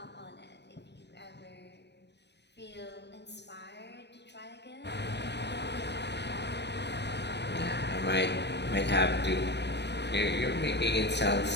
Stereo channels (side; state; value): right; late; 0.50 ms